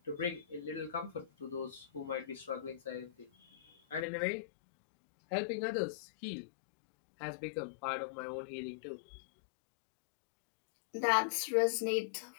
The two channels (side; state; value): right; drops out; at 4.0 s